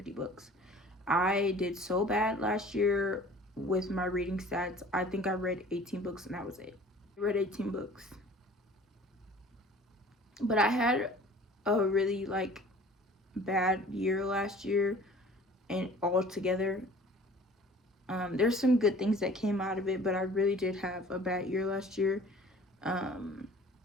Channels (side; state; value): both; normal; correlation 0.47